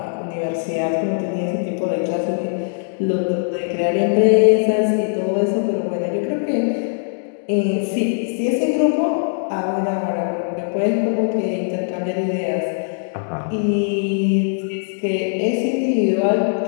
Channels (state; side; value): silent; right; digital silence